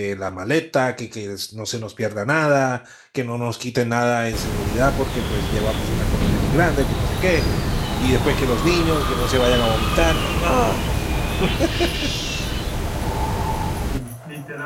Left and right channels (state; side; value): identical; both; correlation 1.00